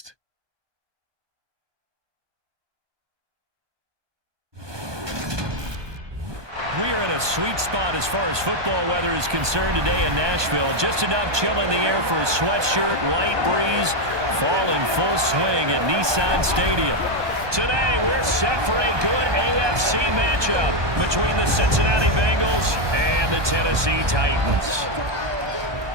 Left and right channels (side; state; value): left; late; 1.2 ms